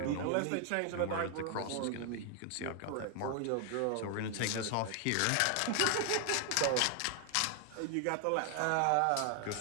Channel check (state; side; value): different; both; correlation 0.00